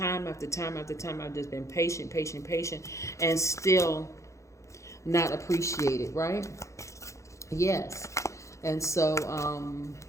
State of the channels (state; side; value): late; right; 0.15 ms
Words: after time after time. I've just been patient, and still not appreciated, right? Yes. And so,